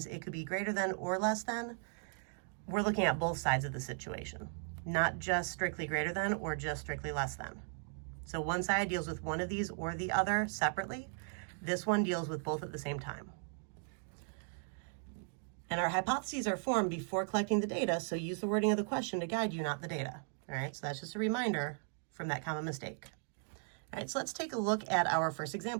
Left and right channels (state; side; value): silent; left; 53 dB below the other